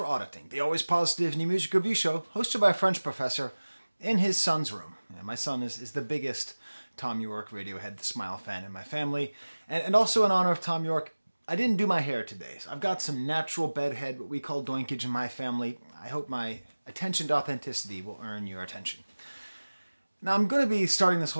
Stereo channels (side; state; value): both; inverted; correlation -1.00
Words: auditing the always positive new music review show hosted by a French professor in his son's room. And my son is the biggest Tom York, Radiohead, The Smile fan in my family. And also in honor of Tom York, I didn't do my hair today. So I've got some natural bedhead, what we call doinkage in my family. I hope my attention to authenticity will earn your attention. Now I'm going to be starting this